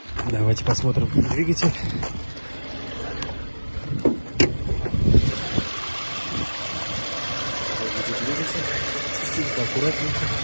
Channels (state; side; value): inverted; both; correlation -1.00